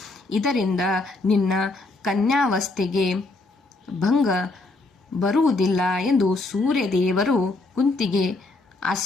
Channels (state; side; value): quieter; right; 3.2 dB